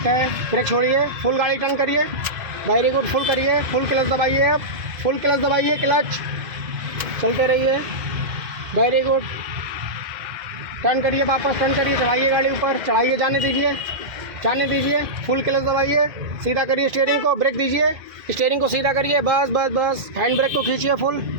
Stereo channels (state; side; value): late; left; 2.1 ms